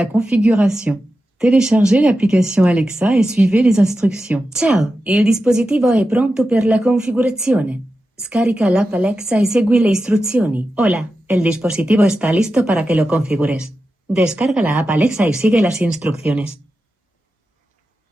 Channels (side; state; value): both; normal; correlation 0.91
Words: configuration. Téléchargez l'application Alexa et suivez les instructions. Ciao, il dispositivo è pronto per la configurazione. Scarica l'app Alexa y segui le istruzioni. Hola, el dispositivo está listo para que lo configures. Descarga la app Alexa y sigue las instrucciones.